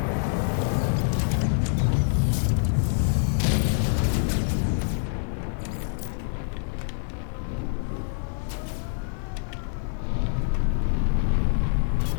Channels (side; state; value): right; silent; digital silence